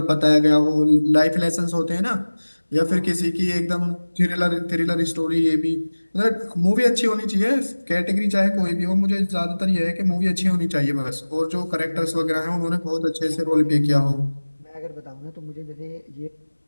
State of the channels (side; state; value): both; inverted; correlation -1.00